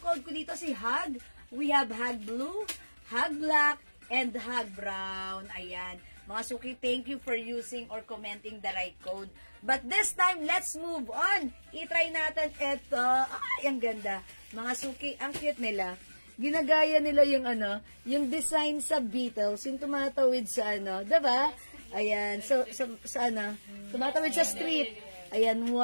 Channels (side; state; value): both; inverted; correlation -1.00